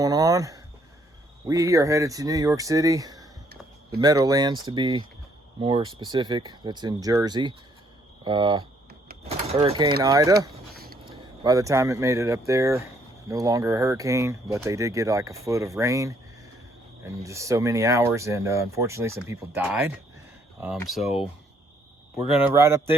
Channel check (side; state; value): both; normal; correlation 0.68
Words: on? We are headed to New York City, the Meadowlands to be more specific. That's in Jersey. Hurricane Ida, by the time it made it up there, no longer a hurricane, but they did get like a foot of rain in just so many hours, and unfortunately some people died. So we're gonna ride up